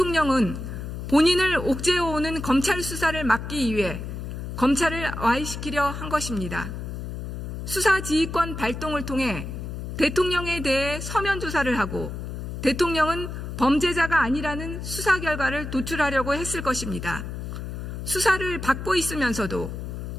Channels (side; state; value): left; noise; hum, 7 dB below the sound